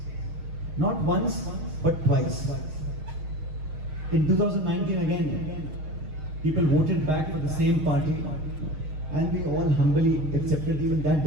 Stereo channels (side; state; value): left; late; 6.5 ms